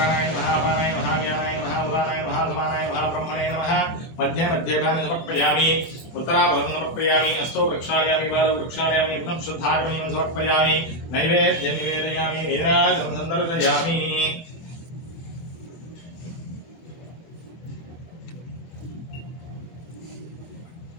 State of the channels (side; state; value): right; late; 24 ms